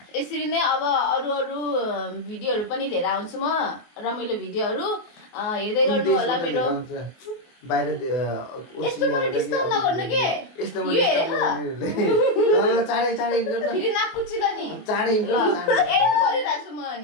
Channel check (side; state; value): right; late; 24 ms